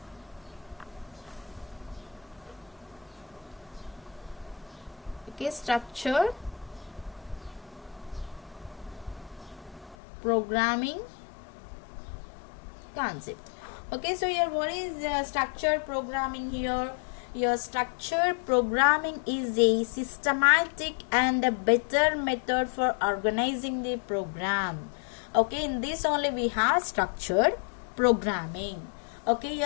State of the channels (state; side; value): drops out; right; at 10.0 s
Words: Okay, structured programming concept. Okay, so here what is structured programming here? Your structured programming is a systematic and a better method for organizing the program. Okay, in this only we have structured programming. Okay,